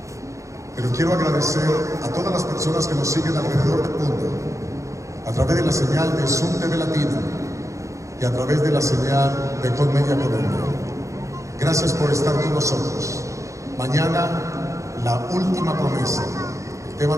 Pero quiero agradecer a todas las personas que nos siguen alrededor del mundo, a través de la señal de Zoom TV Latino y a través de la señal de Colmedia Colombia. Gracias por estar con nosotros. Mañana, la última promesa. El tema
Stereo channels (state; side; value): late; left; 0.15 ms